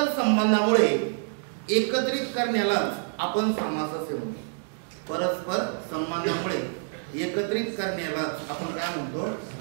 संबंधामुळे एकत्रित करण्याला आपण समास असे म्हणतो. परस्पर संबंधामुळे एकत्रित करण्याला आपण काय म्हणतो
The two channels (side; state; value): left; silent; 60 dB below the other